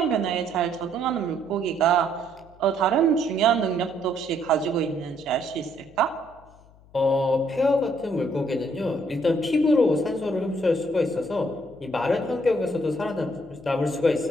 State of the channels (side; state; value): left; noise; hum, 26 dB below the sound